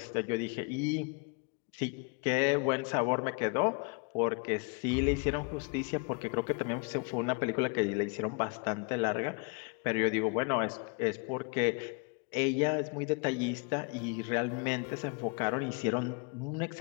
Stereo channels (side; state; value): right; quieter; 33.2 dB